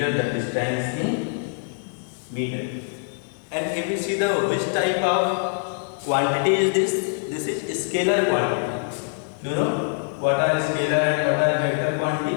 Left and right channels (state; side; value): silent; right; digital silence